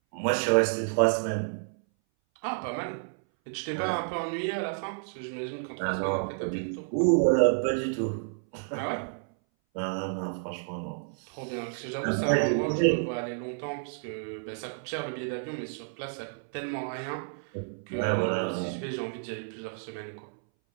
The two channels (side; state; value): left; silent; 58 dB below the other